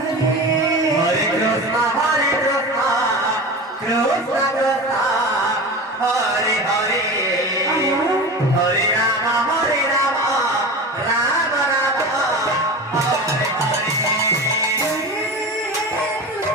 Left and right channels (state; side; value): normal; both; correlation 0.30